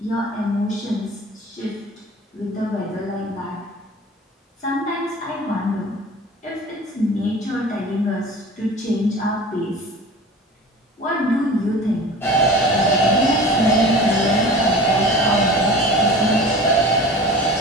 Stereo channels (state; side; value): normal; both; correlation 0.38